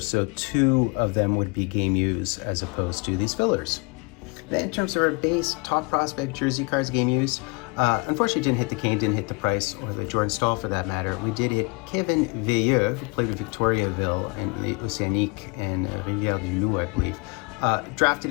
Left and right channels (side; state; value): right; quieter; 29.1 dB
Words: so 2 of them would be game use as opposed to these fillers. Then in terms of our base top prospect jersey cards game use, unfortunately didn't hit the Kane, didn't hit the Price, or the Jordan Staal for that matter. We did hit Keven Veilleux, who played with Victoriaville in the Océanique and Rivière du Loup, I believe. Drafted,